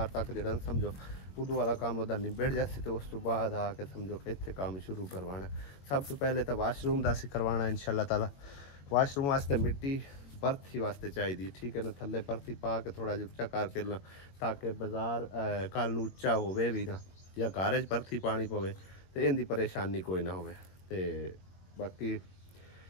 ਤੱਕ ਜਿਹੜਾ ਸਮਝੋ ਉਦੋਂ ਵਾਲਾ ਕੰਮ ਉਹਦਾ ਨਿਬੜ ਜਾਸੀ ਤੇ ਉਸ ਤੋਂ ਬਾਅਦ ਆ ਕੇ ਸਮਝੋ ਕਿ ਇੱਥੇ ਕੰਮ ਸ਼ੁਰੂ ਕਰਵਾਉਣਾ ਸਭ ਤੋਂ ਪਹਿਲੇ ਤਾਂ ਵਾਸ਼ਰੂਮ ਦਾ ਅਸੀਂ ਕਰਵਾਉਣਾ ਇਨਸ਼ਾਅੱਲਾ ਤਾਲਾ ਵਾਸ਼ਰੂਮ ਵਾਸਤੇ ਮਿੱਟੀ परथी वास्ते चाहिए ठीक है ना थले परथी पा के थोड़ा जिहा उच्चा करके ताकि बाजार कल नूं उच्चा होवे भी ना या घर च परथी पानी पवे तो इनकी परेशानी कोई ना होवे ते बाकी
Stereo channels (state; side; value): late; right; 22 ms